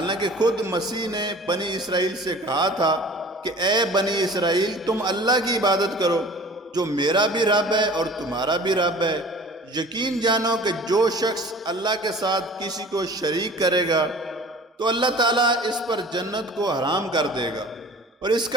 خود مسیح نے بنی اسرائیل سے کہا تھا کہ اے بنی اسرائیل تم اللہ کی عبادت کرو جو میرا بھی رب ہے اور تمہارا بھی رب ہے۔ یقین جانو کہ جو شخص اللہ کے ساتھ کسی کو شریک کرے گا تو اللہ تعالیٰ اس پر جنت کو حرام کر دے گا اور اس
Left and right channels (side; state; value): both; normal; correlation 0.44